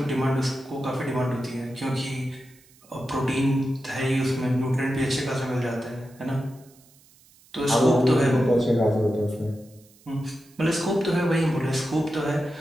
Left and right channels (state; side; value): noise; right; hiss, 28 dB below the sound